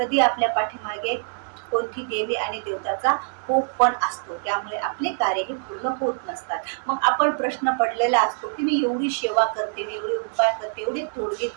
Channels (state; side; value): silent; left; digital silence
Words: आपल्या पाठीमागे कोणती देवी आणि देवताचा कोप पण असतो. त्यामुळे आपले कार्य हे पूर्ण होत नसतात. मग आपण प्रश्न पडलेला असतो की मी एवढी सेवा करते, मी एवढे उपाय करते, एवढे तोडगे